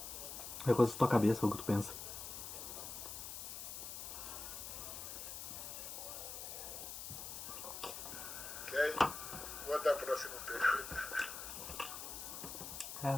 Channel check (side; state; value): left; noise; hiss, 7 dB below the sound